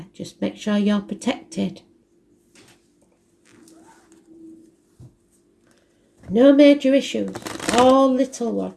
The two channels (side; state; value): both; identical; correlation 1.00